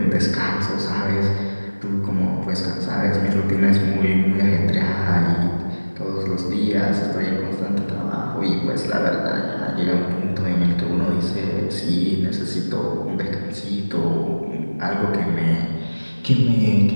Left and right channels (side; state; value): both; inverted; correlation -1.00